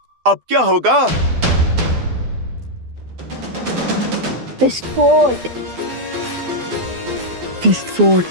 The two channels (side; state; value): left; late; 12 ms